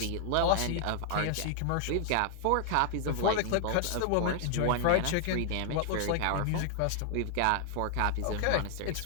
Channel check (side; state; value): both; different; correlation 0.00